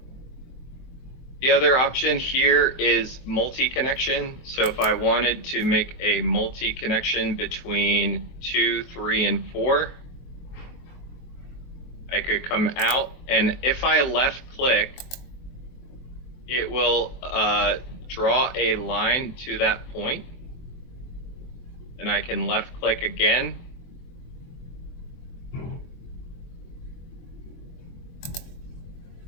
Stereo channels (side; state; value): right; late; 23 ms